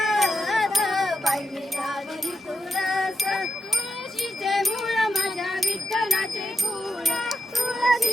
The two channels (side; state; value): both; normal; correlation 0.85